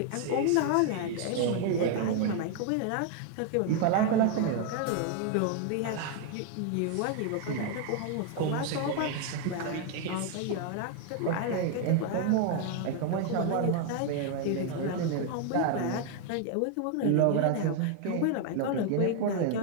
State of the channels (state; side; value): different; both; correlation 0.00